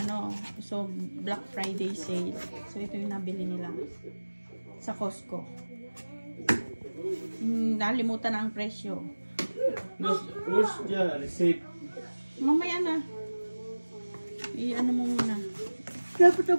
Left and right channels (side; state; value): both; inverted; correlation -1.00